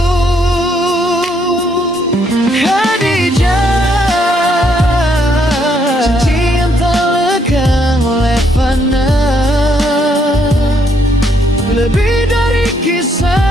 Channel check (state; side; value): normal; both; correlation 0.71